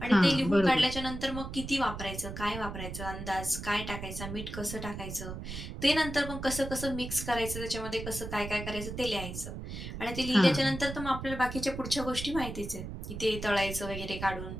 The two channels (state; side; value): noise; right; rumble, 8 dB below the sound